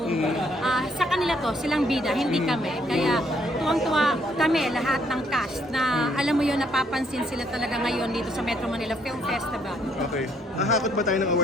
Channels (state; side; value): normal; both; correlation 0.69